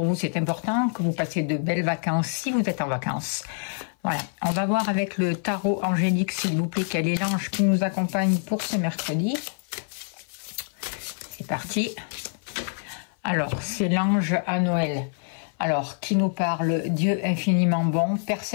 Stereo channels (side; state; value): right; silent; 56 dB below the other